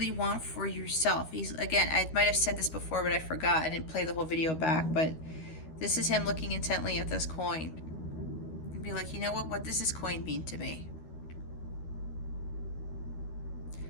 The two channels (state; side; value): late; right; 13 ms